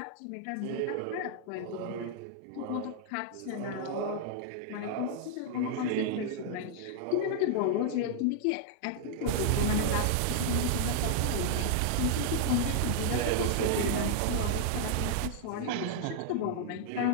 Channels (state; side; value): different; both; correlation -0.01